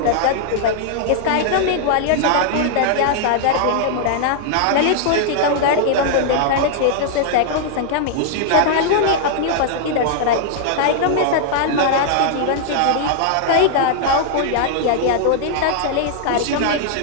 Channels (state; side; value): different; both; correlation -0.01